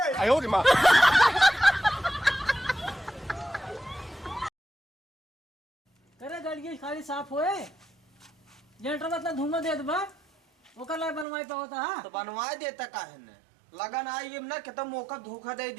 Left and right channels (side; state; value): left; drops out; at 11.2 s